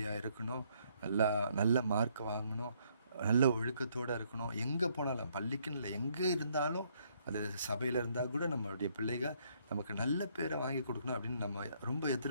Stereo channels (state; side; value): inverted; both; correlation -0.70